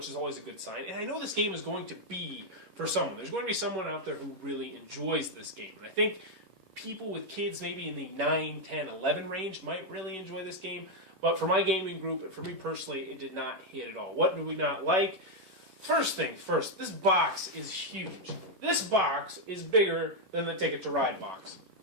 is always a good sign. And I know this game is going to be for someone. There's going to be someone out there who really enjoys this game, and I think people with kids maybe in the 9, 10, 11 range might really enjoy this game. But for my gaming group, and for me personally, it did not hit at all. What do we not like? First thing first, this box is huge. This box is bigger than the Ticket to Ride box.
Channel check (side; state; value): left; late; 11 ms